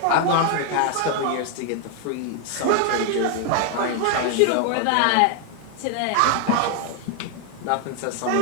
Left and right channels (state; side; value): different; both; correlation 0.00